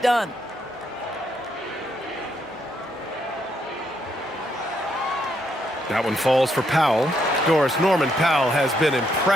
done. That one falls for Powell. Doris, Norman Powell has been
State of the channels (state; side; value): normal; both; correlation 0.75